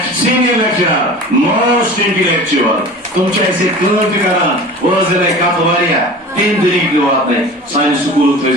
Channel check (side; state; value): both; normal; correlation 0.38